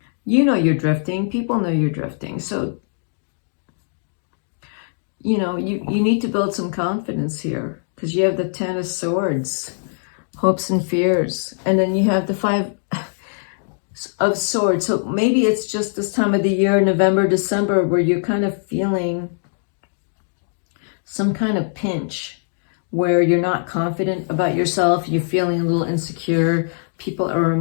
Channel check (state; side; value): silent; right; digital silence